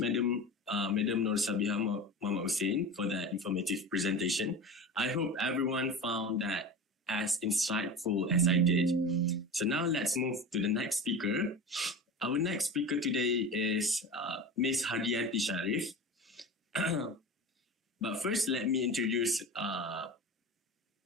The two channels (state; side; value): normal; both; correlation 0.30